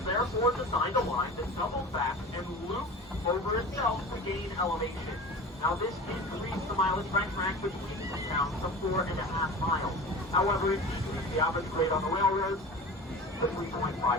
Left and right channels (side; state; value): both; normal; correlation 0.34